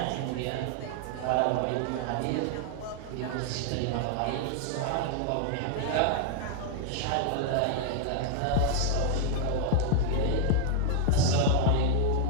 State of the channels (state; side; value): different; both; correlation 0.00